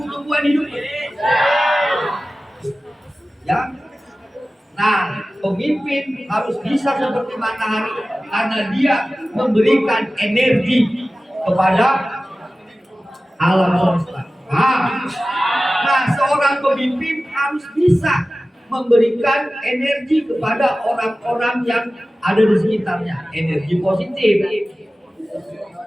hidup? Ya. Nah, pemimpin harus bisa seperti matahari karena dia memberikan energi kepada alam semesta. Nah, seorang pemimpin harus bisa memberikan energi kepada orang-orang yang ada di sekitarnya, energi positif.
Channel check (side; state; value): both; normal; correlation 0.96